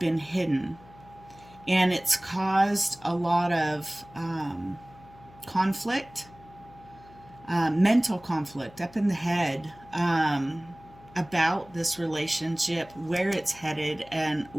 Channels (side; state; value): left; noise; hum, 23 dB below the sound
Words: hidden, and it's caused a lot of conflict, mental conflict up in the head, about this relationship, where it's headed, and